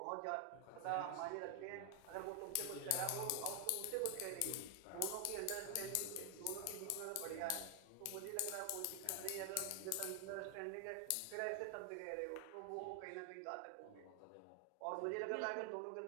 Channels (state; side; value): different; both; correlation 0.00